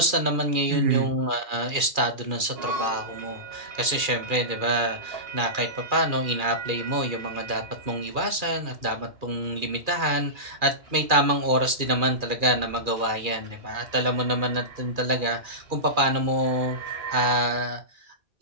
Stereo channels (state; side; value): late; left; 2.4 ms